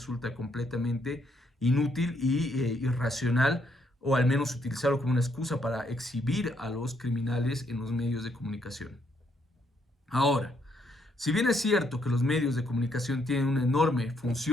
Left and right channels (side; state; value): both; normal; correlation 0.73